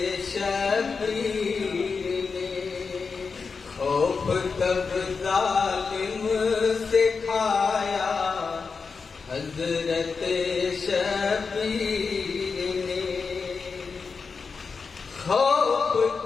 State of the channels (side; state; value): right; quieter; 5.0 dB